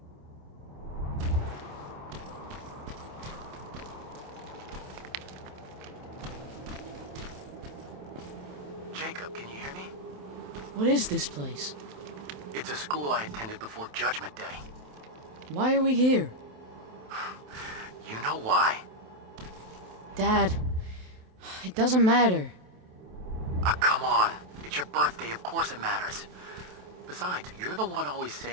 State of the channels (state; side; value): late; left; 27 ms